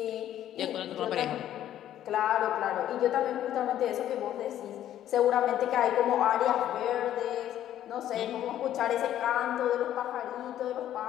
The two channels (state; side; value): quieter; right; 11.7 dB